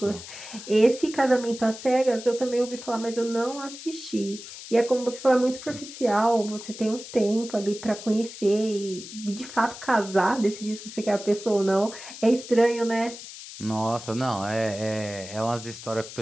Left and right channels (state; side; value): noise; left; hiss, 13 dB below the sound